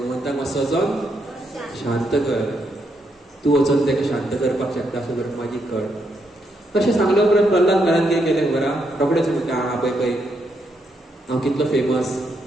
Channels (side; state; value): both; normal; correlation 0.78